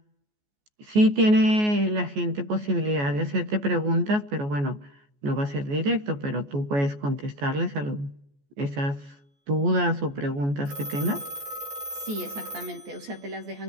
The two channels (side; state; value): left; late; 14 ms